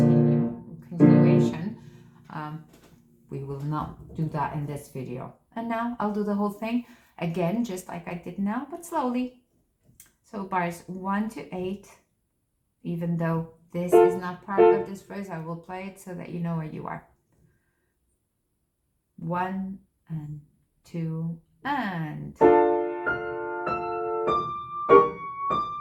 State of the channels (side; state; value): both; identical; correlation 1.00